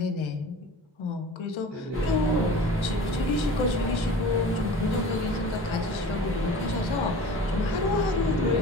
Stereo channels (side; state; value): both; normal; correlation 0.40